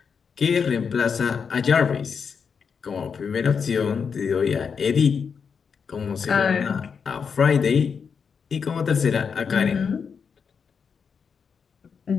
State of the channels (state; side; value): quieter; right; 6.2 dB